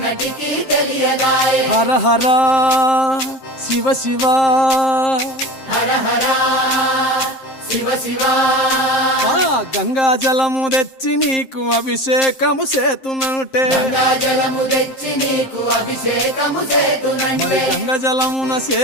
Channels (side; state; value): right; late; 7.6 ms